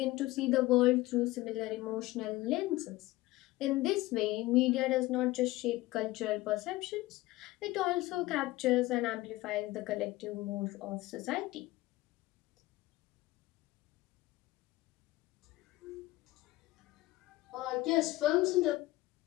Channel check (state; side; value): quieter; right; 18.6 dB